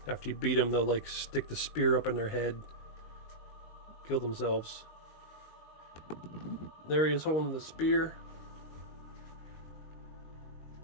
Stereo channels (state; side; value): late; right; 19 ms